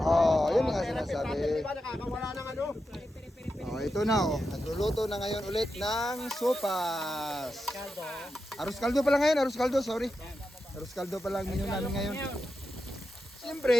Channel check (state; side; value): normal; both; correlation 0.89